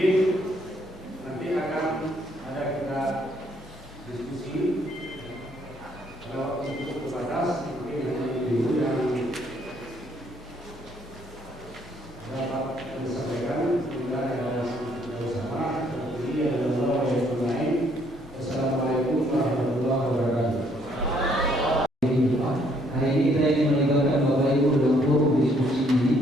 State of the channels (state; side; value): normal; both; correlation 0.67